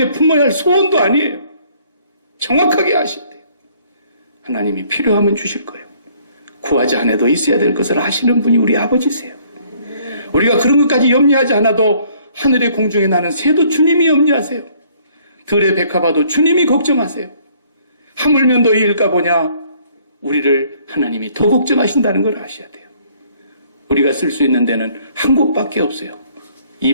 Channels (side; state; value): both; inverted; correlation -0.61